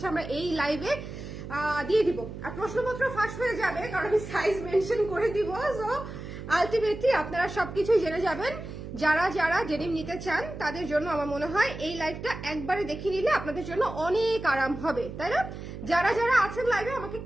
আমরা এই লাইভে দিয়ে দিব। আর প্রশ্নপত্র ফাঁস হয়ে যাবে কারণ আমি সাইজ মেনশন করে দিব। সো আলটিমেটলি আপনারা সবকিছুই জেনে যাবেন। যারা যারা ডেনিম নিতে চান তাদের জন্য আমার মনে হয় এই লাইভটা একবারে দেখে নিলে আপনাদের জন্য অনেক আরাম হবে, তাই না? যারা যারা আছেন লাইভে আমাকে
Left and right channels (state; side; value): noise; right; hum, 10 dB below the sound